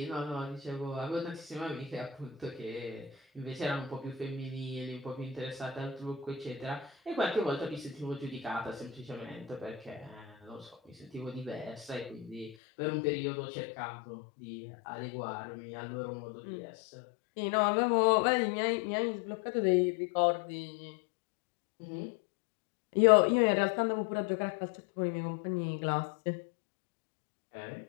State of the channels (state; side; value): drops out; right; at 12.6 s